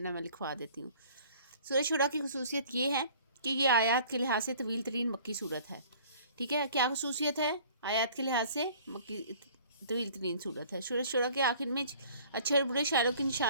ہے میں لکھوا دیتی ہوں۔ سورہ شعراء کی خصوصیت یہ ہے کہ یہ آیات کے لحاظ سے طویل ترین مکی صورت ہے، ٹھیک ہے۔ کیا خصوصیت ہے؟ آیات کے لحاظ سے مکی طویل ترین صورت ہے۔ سورہ شعراء کے آخر میں اچھے اور برے شاعروں کی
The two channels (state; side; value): inverted; both; correlation -0.51